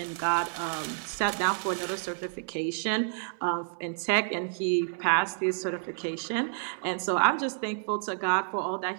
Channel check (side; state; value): left; silent; 58 dB below the other